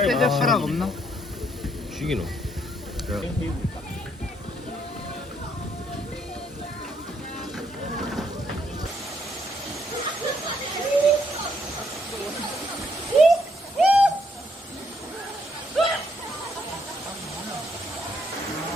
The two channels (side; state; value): both; normal; correlation 0.72